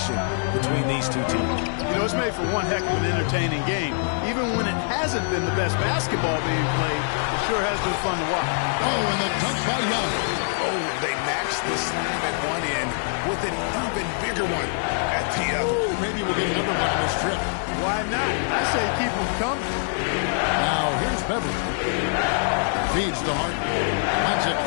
between these two teams. You know, it's made for one heck of an entertaining game. Even when it hasn't been the best basketball being played, it sure has been fun to watch. Oh, and the dunk by Young. Oh, they matched the slam at one end with an even bigger one at the other. Ooh, maybe we'll get another one on this trip. Why not? I say keep them coming. Now, here's Beverly. Feeds to Harden. Lets it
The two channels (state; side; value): silent; right; digital silence